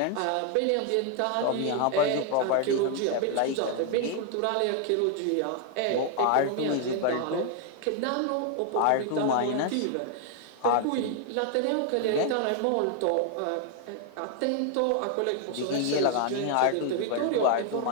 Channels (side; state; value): both; different; correlation 0.00